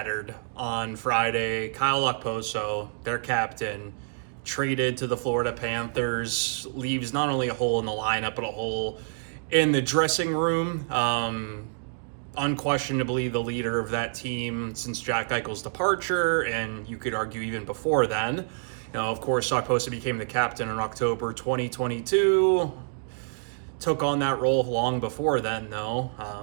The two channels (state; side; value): silent; left; digital silence